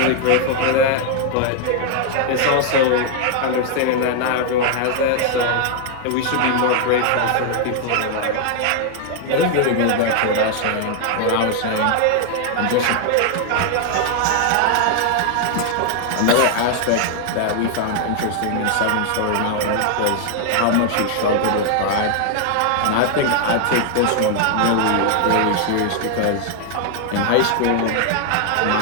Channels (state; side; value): different; both; correlation 0.00